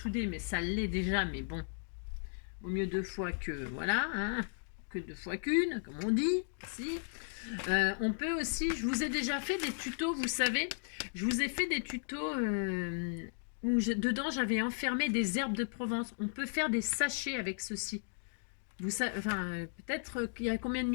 mais ça l'est déjà, mais bon, vaut mieux 2 fois que voilà, hein, que 2 fois qu'une, comme on dit. Si. On peut aussi, je vous ai déjà fait des tutos, vous savez, je vous ai fait des tutos où dedans j'avais enfermé des herbes de Provence. On peut faire des sachets avec ceci. Vous savez, enfin, peut-être qu'il y a combien de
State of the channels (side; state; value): right; silent; digital silence